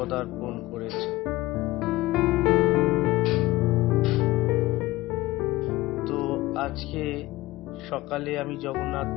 করেছে। তো আজকে সকালে আমি জগন্নাথ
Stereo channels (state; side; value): quieter; right; 18.4 dB